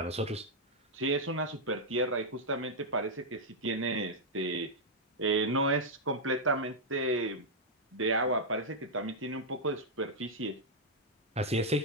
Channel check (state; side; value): normal; both; correlation -0.04